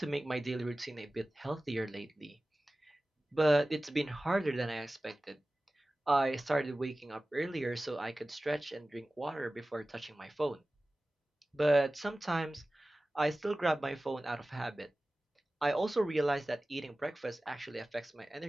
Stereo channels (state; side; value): normal; both; correlation 0.97